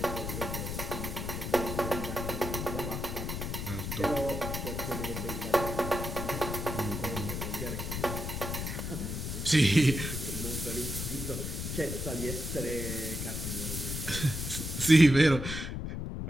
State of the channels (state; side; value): noise; left; rumble, 4 dB below the sound